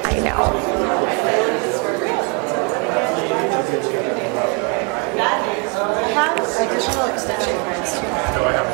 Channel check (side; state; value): left; quieter; 34.4 dB